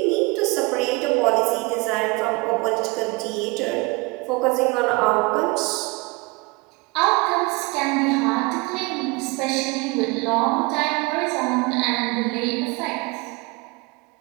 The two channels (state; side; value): quieter; left; 26.3 dB